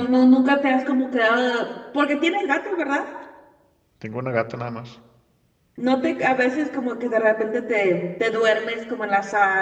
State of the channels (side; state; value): both; identical; correlation 1.00